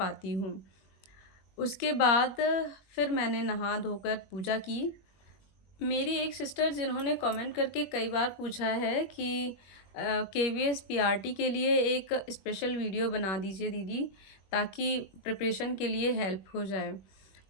हूँ। उसके बाद फिर मैंने नहा धोकर पूजा की। मेरी एक सिस्टर जिन्होंने कमेंट करके कई बार पूछा है कि केवीएस पीआरटी के लिए एक स्पेशल वीडियो बना दीजिए दीदी, ताकि प्रिपरेशन के लिए हेल्प हो जाए।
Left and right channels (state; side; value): late; right; 21 ms